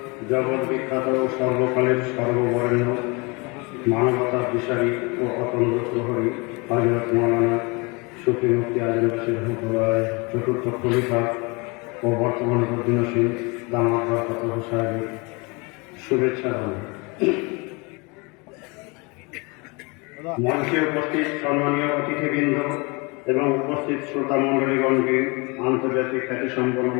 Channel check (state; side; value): quieter; right; 28.7 dB